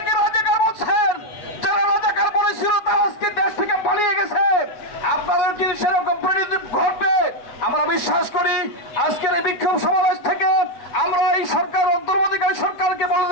রাজাকার বলছেন। যারা রাজাকার বলেছিল তারা আজকে দেশ থেকে পালিয়ে গেছে। আপনাদের যদি সেরকম পরিণতি ঘটবে আমরা বিশ্বাস করি। আজকের এই বিক্ষোভ সমাবেশ থেকে আমরা এই সরকার, অন্তর্বর্তীকালীন সরকারকে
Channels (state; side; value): late; right; 8.3 ms